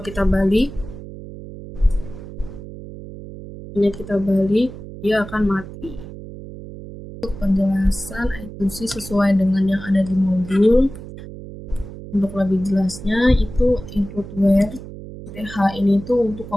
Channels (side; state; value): right; noise; hum, 13 dB below the sound